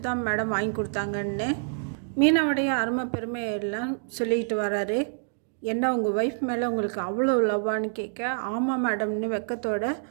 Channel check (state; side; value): silent; left; digital silence